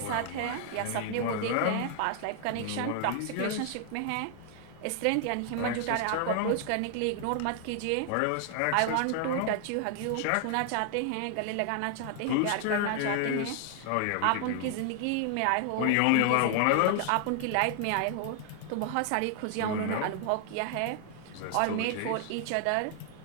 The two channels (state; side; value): different; both; correlation 0.00